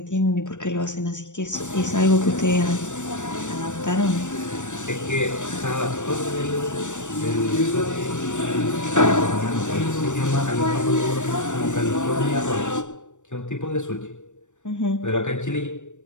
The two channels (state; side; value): late; right; 0.85 ms